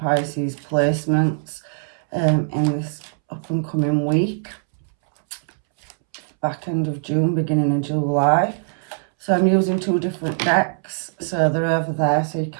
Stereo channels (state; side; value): silent; left; 64 dB below the other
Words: placements in this up and coming week. Back end of June, beginning of July. So I'm using two different decks, so they're over there so you